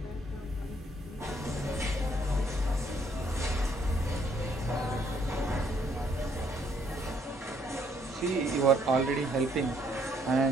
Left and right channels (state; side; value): normal; both; correlation 0.68